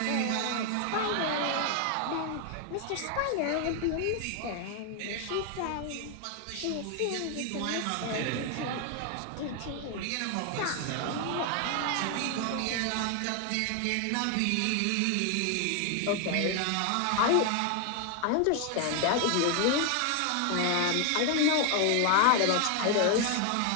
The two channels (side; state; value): both; different; correlation 0.01